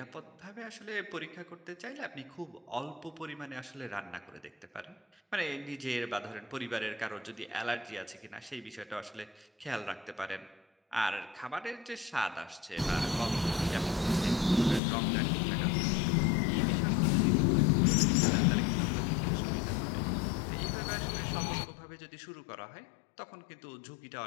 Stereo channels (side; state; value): right; drops out; at 14.8 s